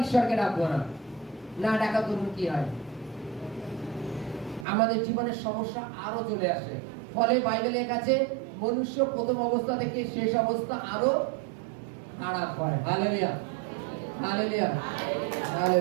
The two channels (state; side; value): drops out; left; at 4.7 s